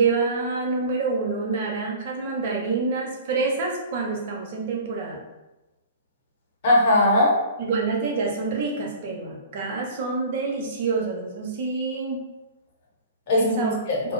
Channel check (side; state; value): both; inverted; correlation -0.44